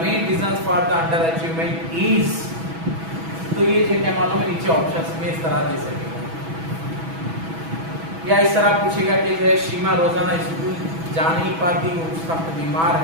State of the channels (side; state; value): left; late; 6.1 ms